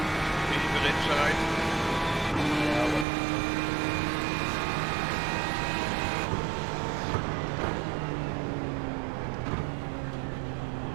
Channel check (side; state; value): left; drops out; at 3.1 s